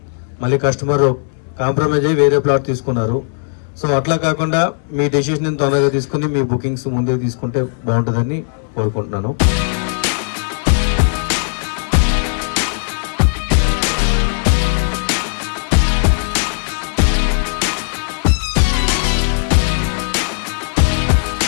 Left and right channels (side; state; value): right; silent; 66 dB below the other